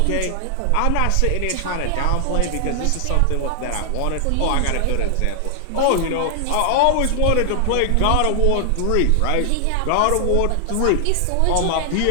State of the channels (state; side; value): different; both; correlation 0.00